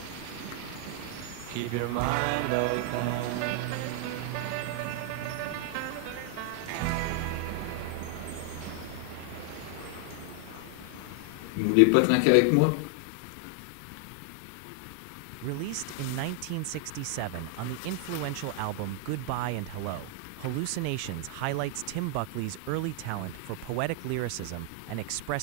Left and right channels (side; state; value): both; different; correlation 0.00